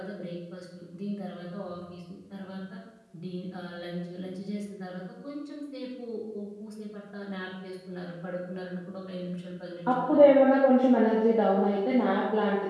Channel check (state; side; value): identical; both; correlation 1.00